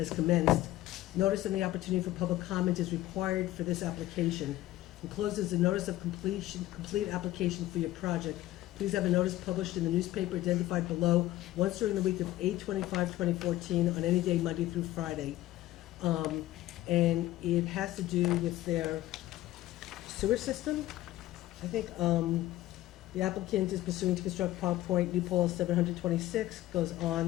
commenced. Notice and the opportunity for public comment is required for this application. Enclosed is a notice of complete application for your project. Please have a notice published in the newspaper identified below once during the week of 8/25/2014 on any day, Monday through Friday. And it has to do with their sewer system. I think the applicant is pursuing to construct Park Point, New Paltz 726, goes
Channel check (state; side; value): quieter; right; 15.6 dB